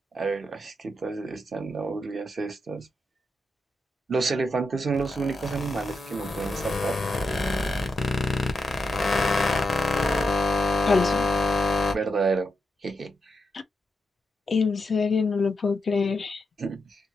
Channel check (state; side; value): normal; both; correlation 0.84